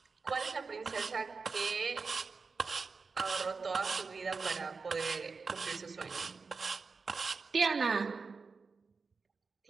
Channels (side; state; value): left; quieter; 4.6 dB